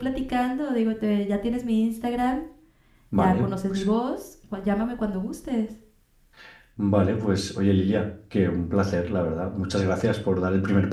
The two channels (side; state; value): both; identical; correlation 1.00